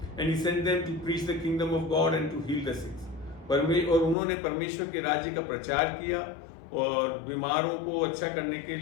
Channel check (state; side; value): drops out; right; at 4.2 s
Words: And he sent them to preach the kingdom of God and to heal the sick. और उन्होंने परमेश्वर के राज्य का प्रचार किया और बीमारों को अच्छा करने के